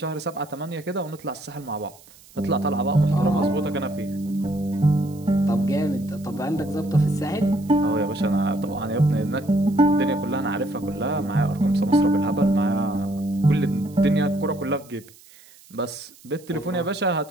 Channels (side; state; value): right; noise; hiss, 25 dB below the sound